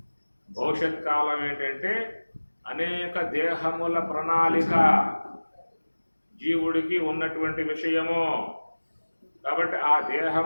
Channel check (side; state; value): both; inverted; correlation -1.00